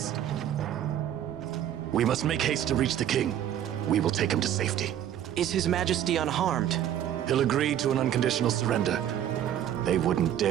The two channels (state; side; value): quieter; left; 10.9 dB